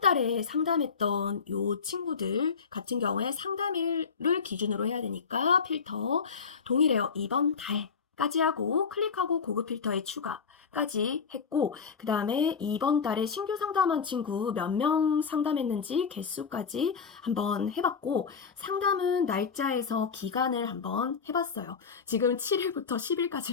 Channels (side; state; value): right; quieter; 5.8 dB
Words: 상담했던 요 친구들 같은 경우에 상담일을 기준으로 해야 되니까 필터 동일해요. 이번 달까지 하고 클릭하고 고급 필터에 추가까지 했고 그 다음에 이번 달에 신규 상담한 친구 몇 명 상담했는지 개수까지 한번 해봤고 상담은 날짜에서 기간을 한번 해봤어요. 지금 7일부터